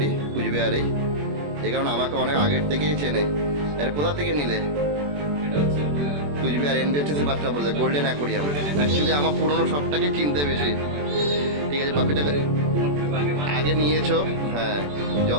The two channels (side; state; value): left; late; 21 ms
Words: কুচবিহারেই। এই কারণে আমাকে অনেক আগের থেকেই চেনে। এর কোথা থেকে নিলে? কুচবিহার এনবিএসটিসি বাসটা বলছে, গোল্ডেন অ্যাকোরিয়াম। অ্যাকচুয়ালি আমার পুরোনো সবটাকে চিনতে বেশি। ঠিক আছে, পাপ্পিটাকে আগে নিয়েছো, হ্যাঁ,